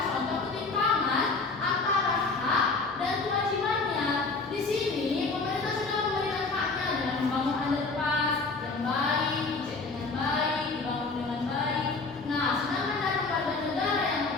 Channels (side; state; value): right; quieter; 3.9 dB